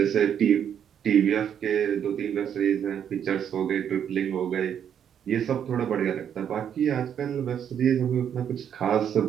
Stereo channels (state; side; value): quieter; left; 8.8 dB